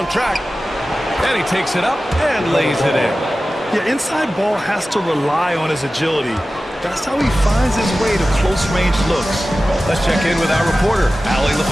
track. And he takes it up and lays it in. Yeah, inside ball has to rely on his agility. That's how he finds his way to close-range looks. Let's check in with our reporter, Allie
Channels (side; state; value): both; normal; correlation 0.95